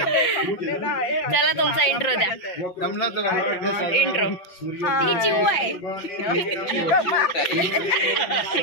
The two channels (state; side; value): late; right; 5.8 ms